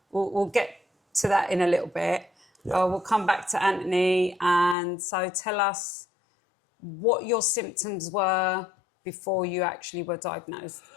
we'll get to that in a little bit. Yeah. We'll come back to Antony. And so tell us what your symptoms were before you actually were diagnosed.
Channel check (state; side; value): drops out; right; at 4.8 s